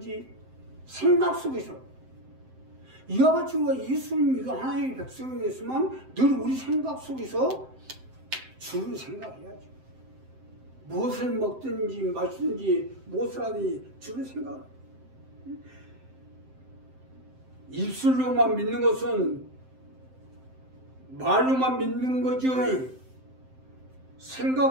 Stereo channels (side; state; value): left; late; 7.7 ms